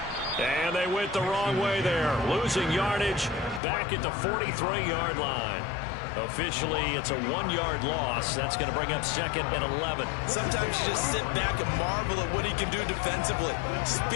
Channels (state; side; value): drops out; right; at 3.6 s